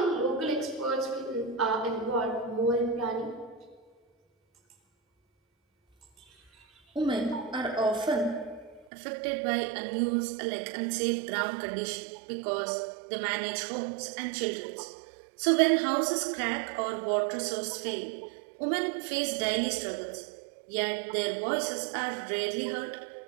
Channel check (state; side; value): drops out; left; at 8.9 s